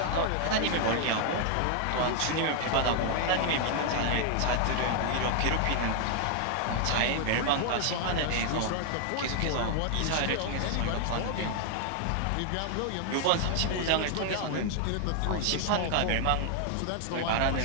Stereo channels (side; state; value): both; different; correlation 0.00